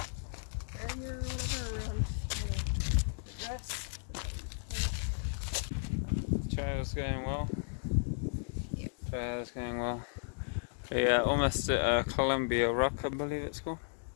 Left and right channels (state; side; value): silent; right; digital silence